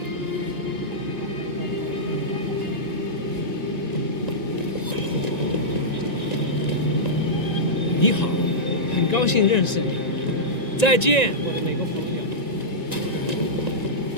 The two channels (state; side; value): late; right; 1.9 ms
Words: 你好，很高兴认识你。再见，我的美国朋友。